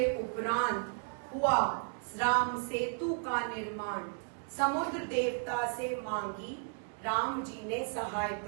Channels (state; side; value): silent; left; 55 dB below the other